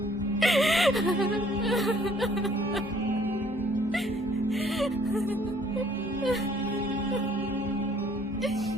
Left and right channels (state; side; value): normal; both; correlation 0.60